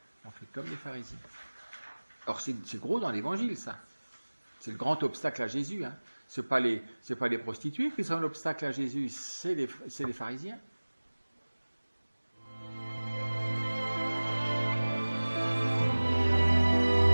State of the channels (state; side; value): inverted; both; correlation -1.00